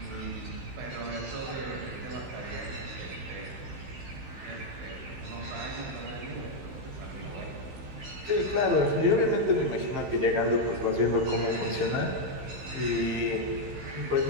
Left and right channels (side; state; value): left; late; 15 ms